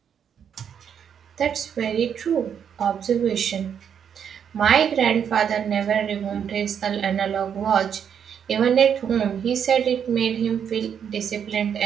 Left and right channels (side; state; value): left; quieter; 8.1 dB